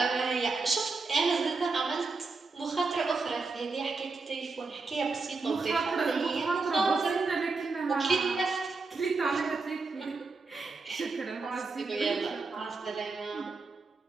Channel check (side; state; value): left; quieter; 4.1 dB